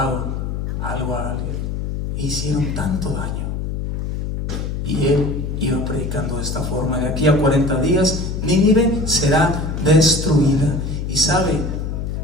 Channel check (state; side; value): noise; left; hum, 3 dB below the sound